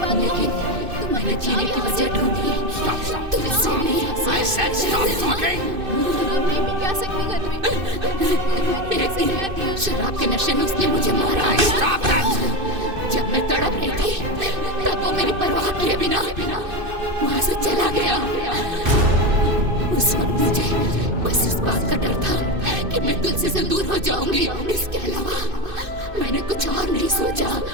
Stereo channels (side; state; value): left; late; 2.6 ms